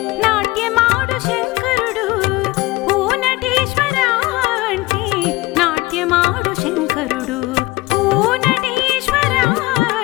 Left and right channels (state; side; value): quieter; right; 20.9 dB